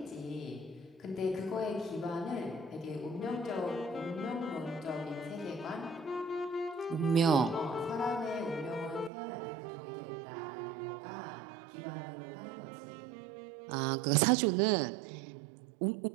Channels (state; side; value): drops out; left; at 9.1 s